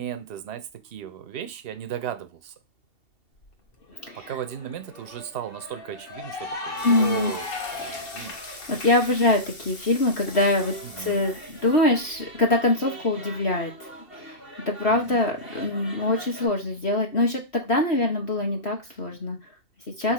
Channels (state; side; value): late; right; 2.7 ms